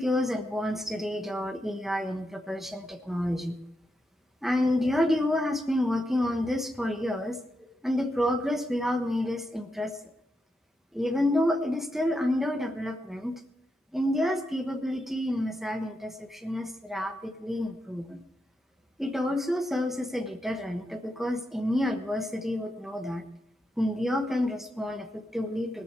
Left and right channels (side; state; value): both; normal; correlation 0.84